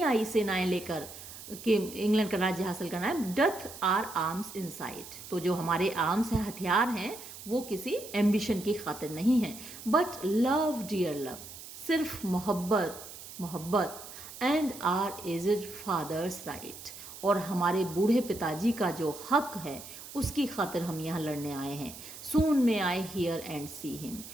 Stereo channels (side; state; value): right; noise; hiss, 14 dB below the sound